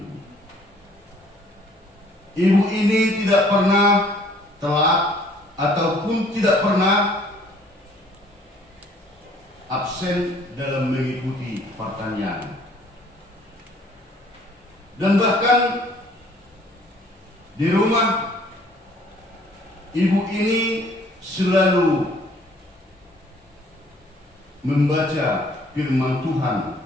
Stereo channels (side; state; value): both; normal; correlation 0.58